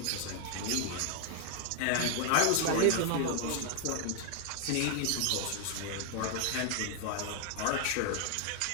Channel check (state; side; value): different; both; correlation 0.00